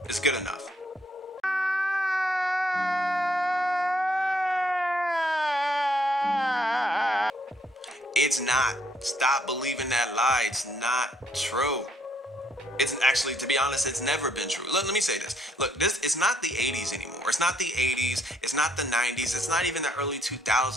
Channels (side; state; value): both; normal; correlation 0.69